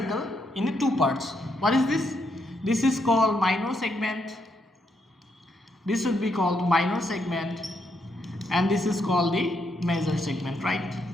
in two parts. What is this? This is called minor segment. This would be called minor segment, and this is called the major segment. Right,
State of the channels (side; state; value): both; normal; correlation 0.77